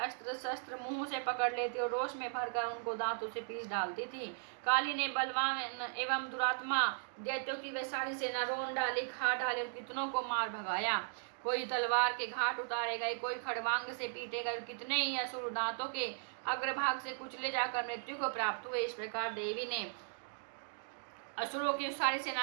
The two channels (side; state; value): left; silent; digital silence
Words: शस्त्र मुंह से पकड़ लेती और रोष में भरकर उनको दांतों से पीस डालती थी। काली ने बलवान एवं दुरात्मा दैत्यों की वे सारी सेना रोन डाली, खा डाली और कितनों को मार भगाया। कोई तलवार के घाट उतारे गए, कोई खड़वांग से पीटे गए, कितने ही असुर दांतों के अग्रभाग से कुचले जाकर मृत्यु को प्राप्त हुए। इस प्रकार देवी ने असुरों की सारी